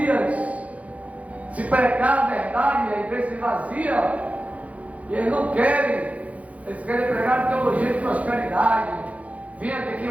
Se pregar a verdade, a igreja se vazia. E eles não querem. Eles querem pregar teologia de prosperidade. Venha que aqui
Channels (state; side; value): late; left; 0.067 ms